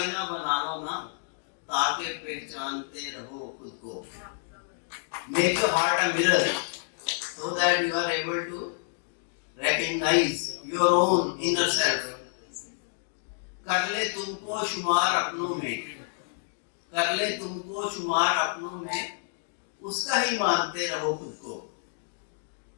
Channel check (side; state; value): right; silent; digital silence